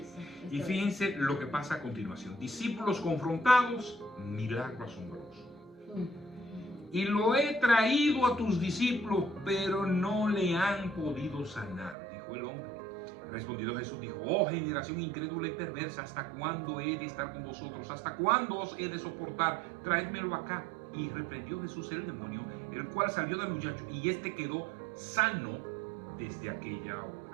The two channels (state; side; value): drops out; left; at 12.0 s